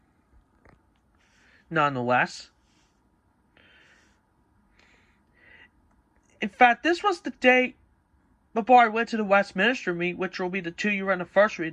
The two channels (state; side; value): identical; both; correlation 1.00